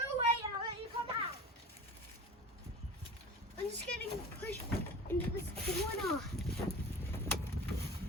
and I'll let you come out. I'm just getting pushed into this corner.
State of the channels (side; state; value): both; normal; correlation 0.36